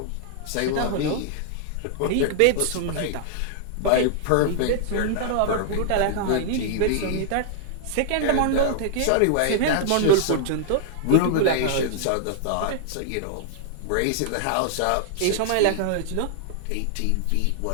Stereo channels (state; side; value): different; both; correlation -0.01